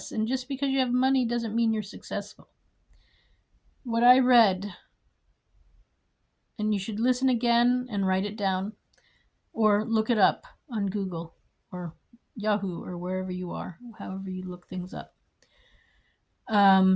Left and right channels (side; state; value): both; identical; correlation 1.00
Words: And just because you have money doesn't mean you're successful. What I read, and you should listen again and write it down, or look it up on Google or Yahoo or wherever you are, however you look things up.